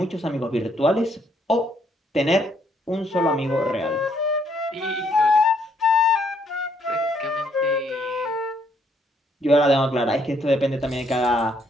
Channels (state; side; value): normal; both; correlation 0.70